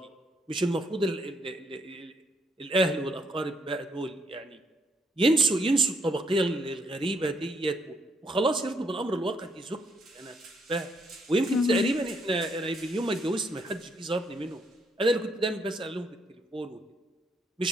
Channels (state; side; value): normal; both; correlation 0.72